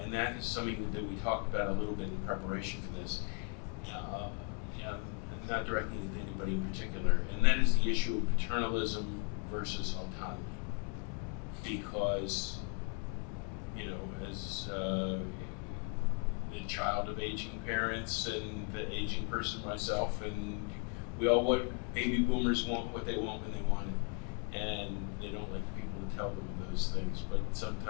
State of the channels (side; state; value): right; quieter; 35.9 dB